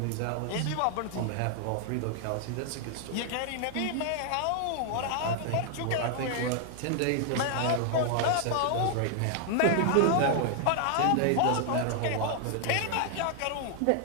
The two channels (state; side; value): different; both; correlation 0.00